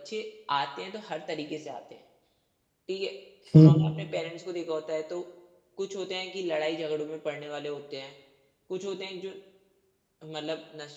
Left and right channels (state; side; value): identical; both; correlation 1.00